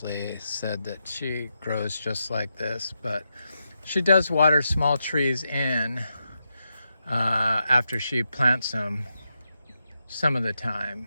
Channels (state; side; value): inverted; both; correlation -0.85